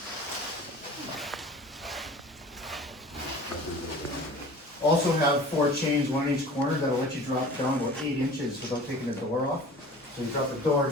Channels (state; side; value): normal; both; correlation 0.42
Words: Also have 4 chains, 1 in each corner, that'll let you drop down about 8 inches without taking the door off. So you drop the door